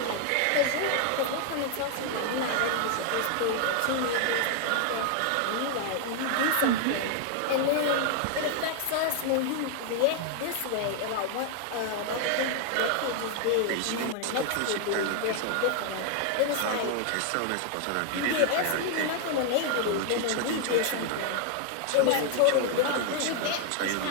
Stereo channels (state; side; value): different; both; correlation 0.00